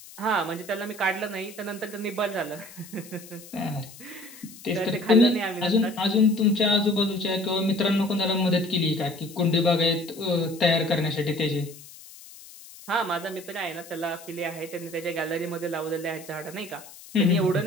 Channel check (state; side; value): noise; left; hiss, 18 dB below the sound